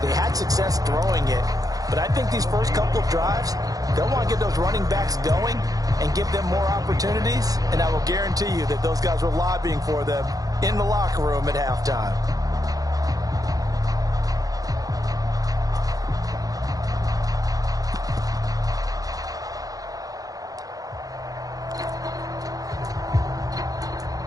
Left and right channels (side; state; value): left; late; 0.17 ms